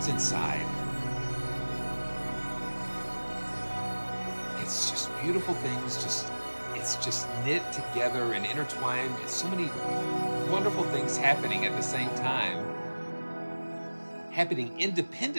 inside. It's just beautiful things. It's just knit together and intertwined. It's so many wonderful things happening at the same time, happening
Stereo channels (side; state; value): both; inverted; correlation -1.00